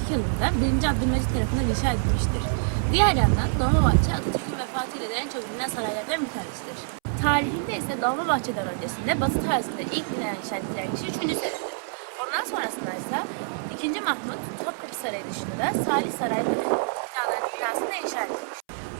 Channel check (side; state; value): left; silent; 61 dB below the other